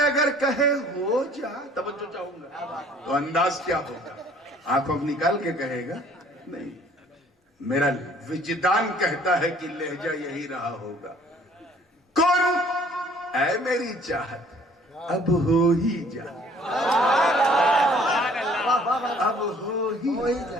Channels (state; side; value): normal; both; correlation 0.56